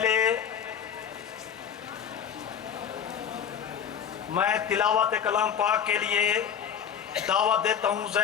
मैं तिलावत कलाम पाक के लिए दावत देता हूं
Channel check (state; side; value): quieter; right; 8.2 dB